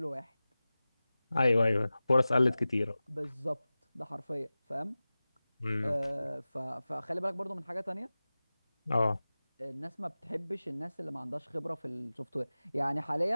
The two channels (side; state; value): both; inverted; correlation -0.97